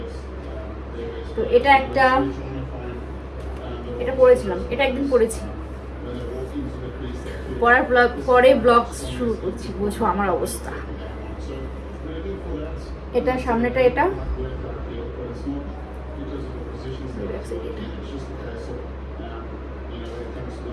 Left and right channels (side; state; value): both; identical; correlation 1.00